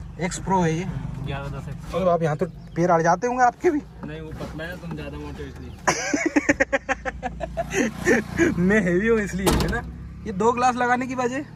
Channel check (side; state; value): both; identical; correlation 1.00